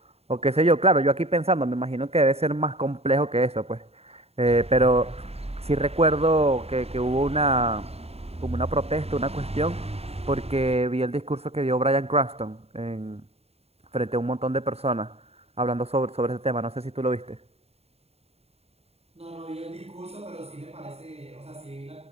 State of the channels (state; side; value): late; left; 0.30 ms